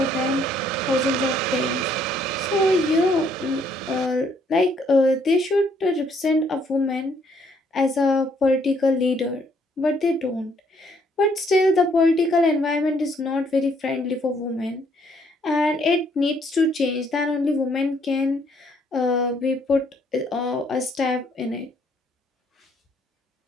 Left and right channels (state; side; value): normal; both; correlation 0.67